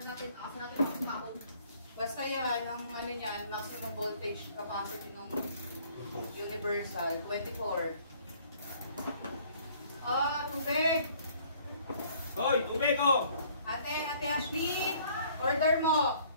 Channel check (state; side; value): inverted; both; correlation -0.58